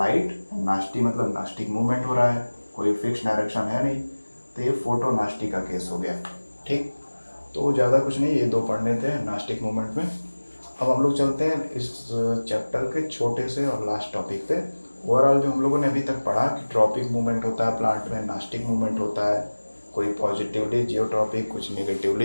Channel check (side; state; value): both; inverted; correlation -1.00